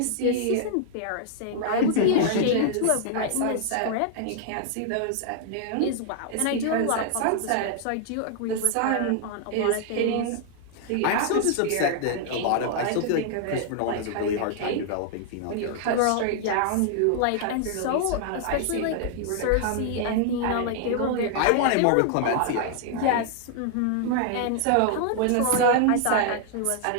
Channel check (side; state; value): both; different; correlation -0.01